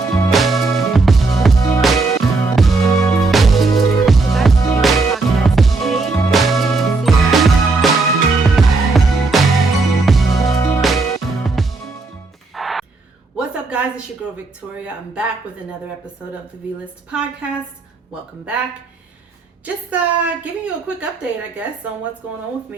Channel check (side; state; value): left; quieter; 3.6 dB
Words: What's up, guys? It's your girl Victoria. I'm back with another episode of the VListPodcast. Welcome back. Just giving you a quick update, I guess, on what's going on with